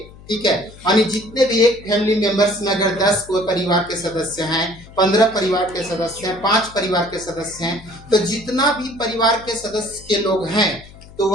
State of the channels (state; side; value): noise; left; hum, 20 dB below the sound